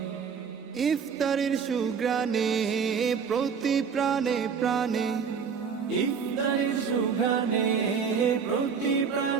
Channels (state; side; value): quieter; left; 6.3 dB